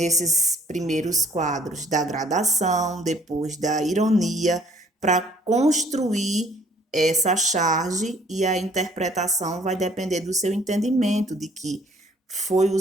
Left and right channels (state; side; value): normal; both; correlation 0.59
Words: primeiros quadros da gradação, depois da ironia, para construir essa charge, e a interpretação vai depender do seu entendimento de que foi